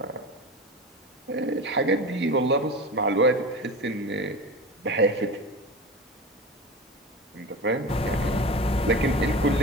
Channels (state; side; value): normal; both; correlation 0.30